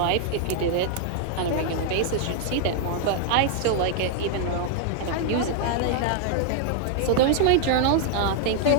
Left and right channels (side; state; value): both; different; correlation 0.00